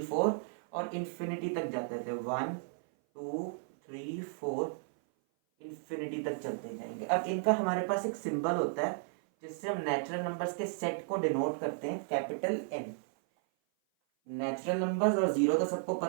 4 और इन्फिनिटी तक जाते थे। 1 2 3 4 इन्फिनिटी तक चलते जाएंगे। अब इनका हमारे पास एक सिंबल होता है जिससे हम नेचुरल नंबर्स के सेट को डिनोट करते हैं, कैपिटल एन। नेचुरल नंबर्स और जीरो तो सबको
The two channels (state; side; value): silent; left; 55 dB below the other